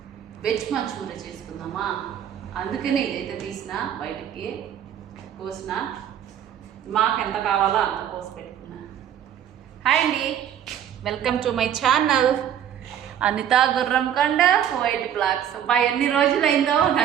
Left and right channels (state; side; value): quieter; left; 9.7 dB